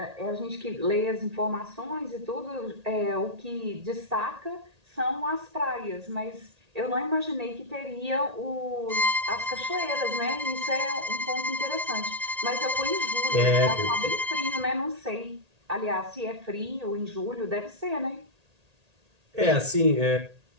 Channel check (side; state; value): left; late; 1.8 ms